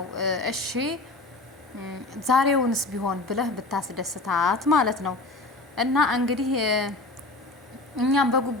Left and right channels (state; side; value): quieter; right; 3.1 dB